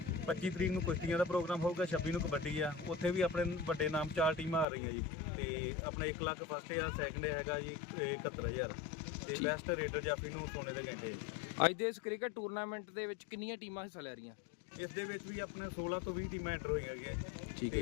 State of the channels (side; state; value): right; drops out; at 4.7 s